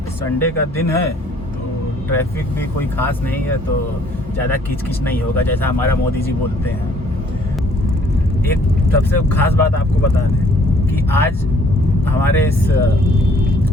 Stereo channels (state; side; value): normal; both; correlation 0.61